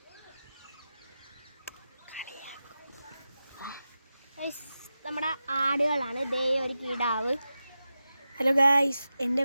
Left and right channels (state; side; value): inverted; both; correlation -0.92